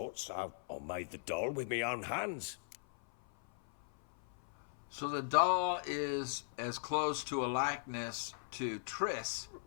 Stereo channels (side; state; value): right; silent; 52 dB below the other